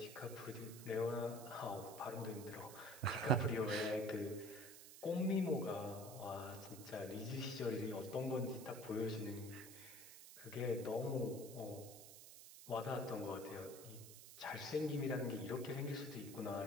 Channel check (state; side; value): noise; right; hiss, 14 dB below the sound